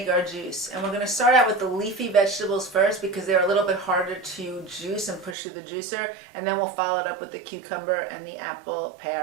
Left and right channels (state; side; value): drops out; left; at 5.4 s